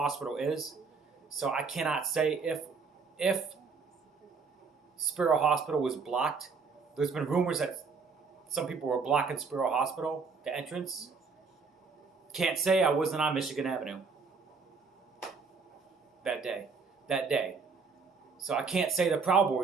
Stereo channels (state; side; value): quieter; left; 4.9 dB